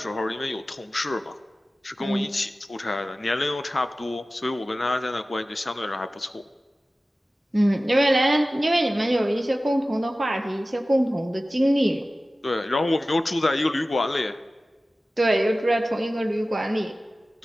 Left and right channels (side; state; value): both; normal; correlation 0.96